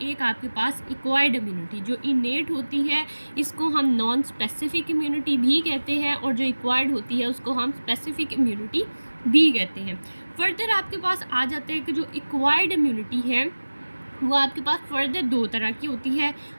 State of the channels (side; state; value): both; inverted; correlation -1.00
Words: आपके पास एक्वायर्ड इम्यूनिटी। जो इनेट होती है इसको हम नॉन स्पेसिफिक इम्यूनिटी भी कहते हैं और जो एक्वायर्ड होती है उसको हम स्पेसिफिक इम्यूनिटी भी कहते हैं। फर्दर आपके पास आ जाते हैं कि जो एक्वायर्ड इम्यूनिटी है वो आपके पास फर्दर 2 तरह की होती है।